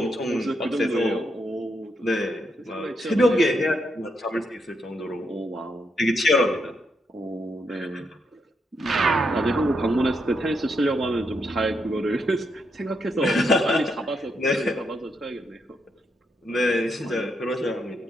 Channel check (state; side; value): normal; both; correlation 0.80